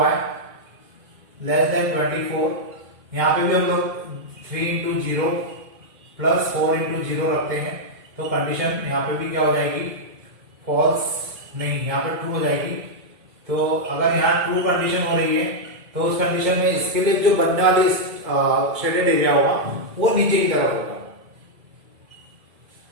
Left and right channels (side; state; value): left; late; 2.1 ms